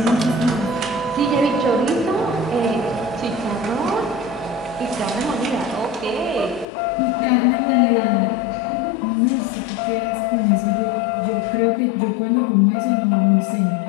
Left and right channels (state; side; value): drops out; right; at 6.7 s